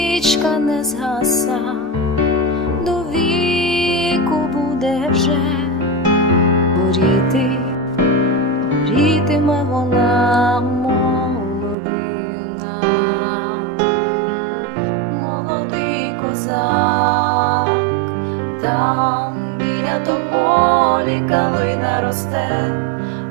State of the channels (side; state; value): left; drops out; at 11.8 s